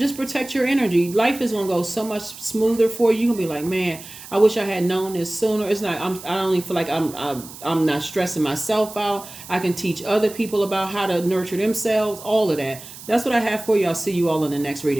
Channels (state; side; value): noise; right; hiss, 15 dB below the sound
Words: protect your energy. Life is going to go so much smoother for you. You're going to be like, man, I wish I had known this sooner. It's not, I don't even feel like I'm not stressing myself out. I can teach other people about how to nurture themselves, all of that. That's what I have for you. I'll see you all in the next